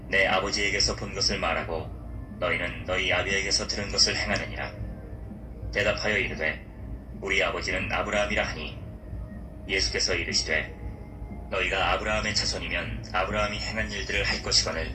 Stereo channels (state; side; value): identical; both; correlation 1.00